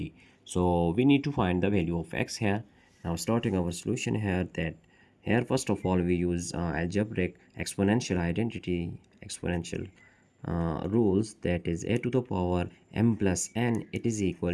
So we need to find the value of x here. Now starting our solution here first of all we use algebraic exponential identity, exponential rules, that is a to the power m plus n, it is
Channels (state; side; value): identical; both; correlation 1.00